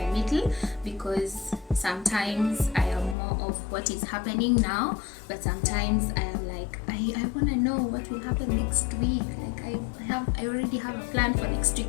middle, because sometimes I am more of what is happening now, but sometimes I am like, like I want to know what will happen next week. Like I already have a plan for next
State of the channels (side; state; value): right; drops out; at 3.2 s